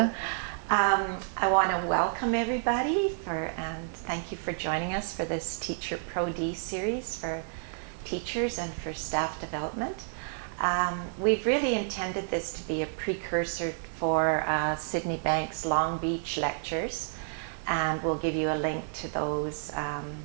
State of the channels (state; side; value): silent; left; digital silence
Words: I want to welcome everybody and thank you for joining us for this Teacher Pro D series for teachers and for staff development. We've really intended this to be a precursor for Sydney Bank's Long Beach lectures, and we'll give you a link to those